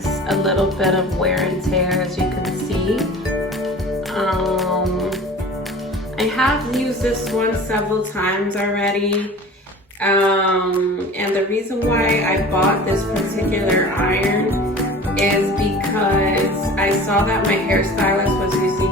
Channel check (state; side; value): normal; both; correlation 0.41